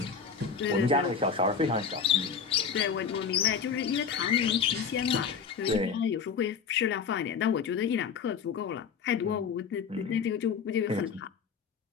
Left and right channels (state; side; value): quieter; right; 6.2 dB